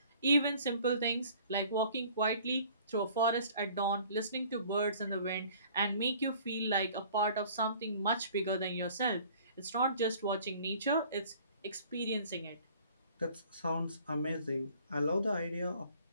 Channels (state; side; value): inverted; both; correlation -0.52